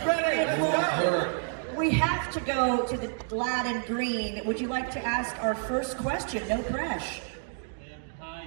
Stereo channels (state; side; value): silent; left; digital silence